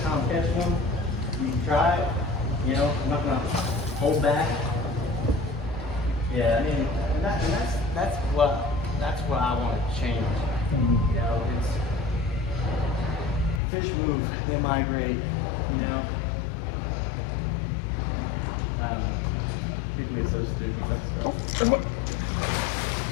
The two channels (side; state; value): right; drops out; at 13.6 s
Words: how I'm catching them. You can try it. You know, I'm not going to hold back. Yeah, I mean, and that's what I want to change. You know, it's fish move, they migrate. You know. People get so stupid.